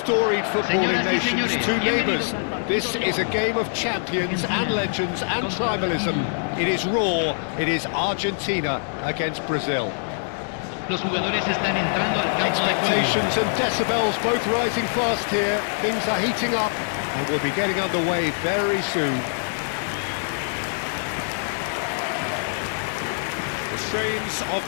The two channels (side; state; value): right; silent; digital silence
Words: footballing nations, two neighbours. This is a game of champions and legends and tribalism. It is raw, it is Argentina against Brazil. Los jugadores están entrando al campo de juego. Expectations and decibels both rising fast here. Things are heating up and we'll be getting underway very soon. The strains of